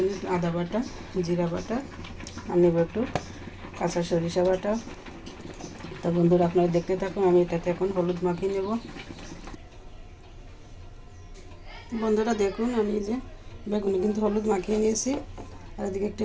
আদা বাটা, জিরা বাটা, আর নেব একটু কাঁচা সরিষা বাটা। তো বন্ধুরা, আপনারা দেখতে থাকুন। আমি এটাতে এখন হলুদ মাখিয়ে নেব। বন্ধুরা দেখুন, আমি যে বেগুনে কিন্তু হলুদ মাখিয়ে নিয়েছি, আর এদিকে একটি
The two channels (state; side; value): identical; both; correlation 1.00